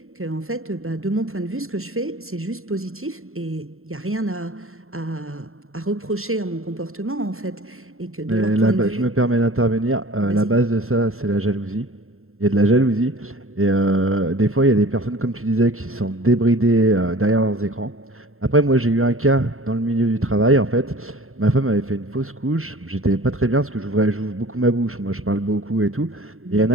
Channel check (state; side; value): late; left; 0.62 ms